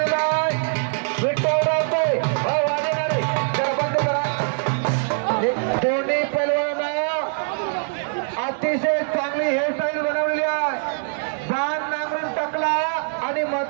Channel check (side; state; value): left; silent; digital silence